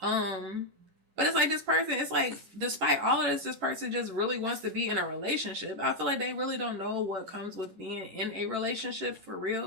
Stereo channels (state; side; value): late; left; 11 ms